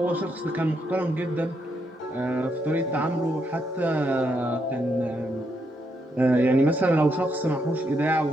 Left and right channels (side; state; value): both; normal; correlation 0.78